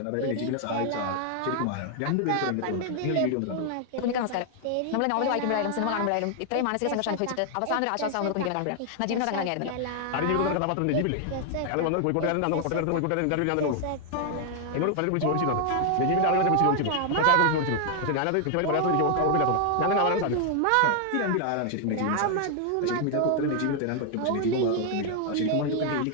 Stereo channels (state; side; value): different; both; correlation 0.00